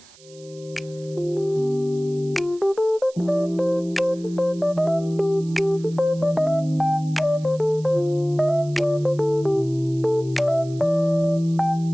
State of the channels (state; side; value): noise; right; hiss, 24 dB below the sound